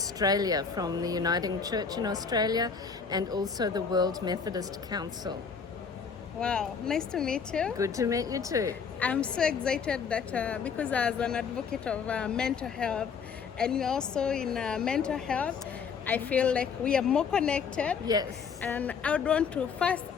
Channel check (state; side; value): quieter; right; 6.0 dB